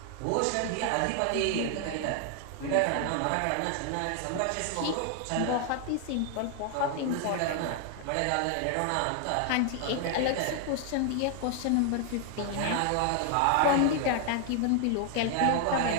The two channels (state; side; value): different; both; correlation 0.00